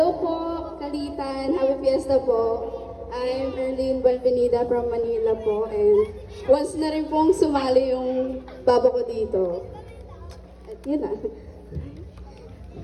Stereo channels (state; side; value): identical; both; correlation 1.00